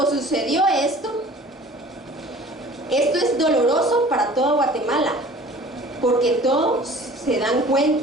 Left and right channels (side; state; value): both; normal; correlation 0.47